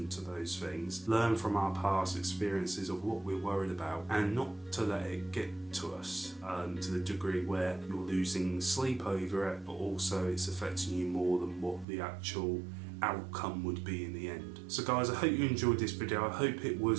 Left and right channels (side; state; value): left; drops out; at 11.9 s